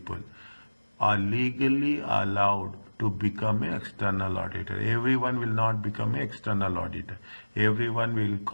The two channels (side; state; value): both; inverted; correlation -1.00